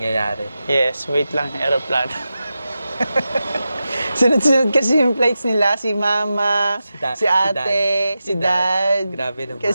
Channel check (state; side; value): inverted; both; correlation -0.92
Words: Yes, wait lang, aeroplano. Sunod-sunod kasi yung flights nila, si Mama, si Ate, si Dad. Grabe naman.